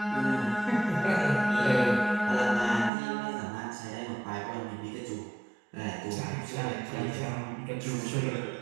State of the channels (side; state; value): left; drops out; at 2.9 s